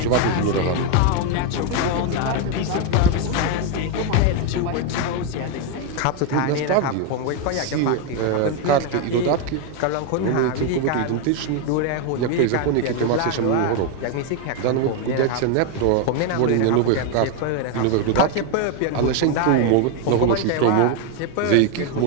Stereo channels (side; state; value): both; different; correlation 0.01